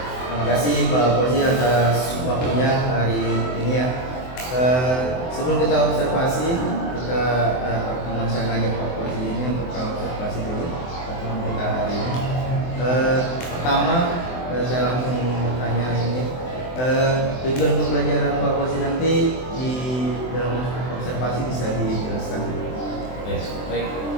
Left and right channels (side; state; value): right; late; 24 ms